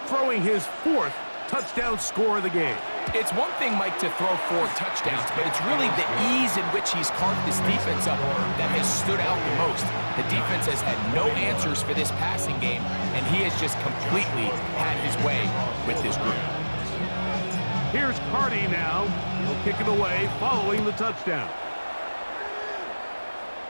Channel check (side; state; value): both; inverted; correlation -1.00